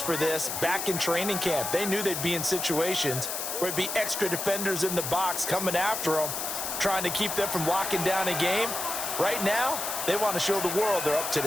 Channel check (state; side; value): noise; left; hiss, 3 dB below the sound